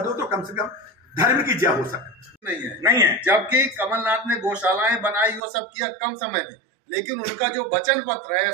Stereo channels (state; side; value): drops out; left; at 5.4 s